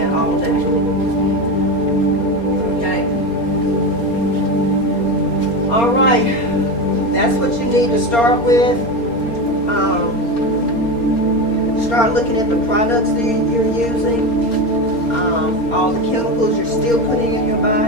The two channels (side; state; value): right; late; 4.3 ms